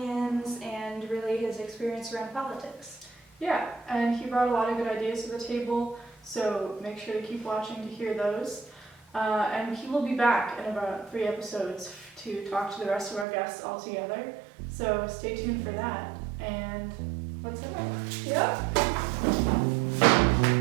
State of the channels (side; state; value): left; drops out; at 13.2 s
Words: and really his experience around politics. Yeah, and he brought a lot of good ideas to the table, so make sure to keep watching to hear those. And he will be back in about 3 episodes to talk to the rest of our guests all together. So stay tuned for that. And let's head on. Yep.